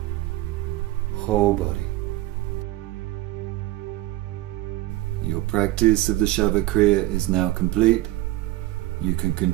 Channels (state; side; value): quieter; left; 17.2 dB